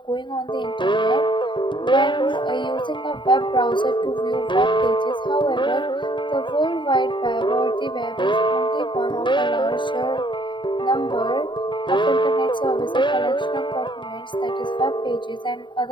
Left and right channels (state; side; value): late; right; 0.23 ms